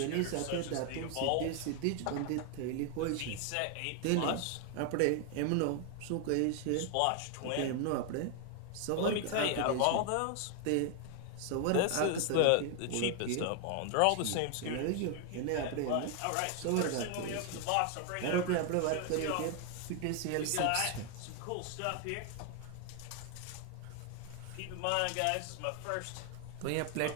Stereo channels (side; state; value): both; different; correlation 0.00